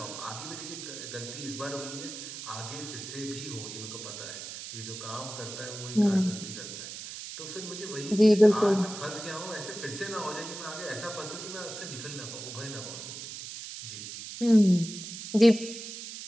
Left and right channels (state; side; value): noise; right; hiss, 9 dB below the sound